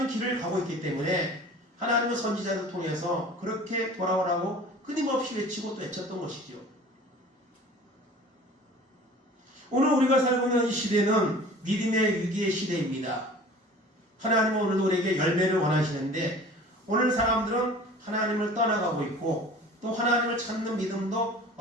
길을 가고 있기 때문에 하나님은 선지자를 통해서 그렇게 돌아오라고 끊임없이 외치고 또 외쳤던 것이죠. 오늘 우리가 살고 있는 이 시대는 믿음의 위기의 시대입니다. 하나님은 오늘 우리에게 열매를 원하시는데 오늘 사람들은 하나님을 떠나가고 있고 또 하나님을 찾는 믿음도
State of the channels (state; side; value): normal; both; correlation 0.44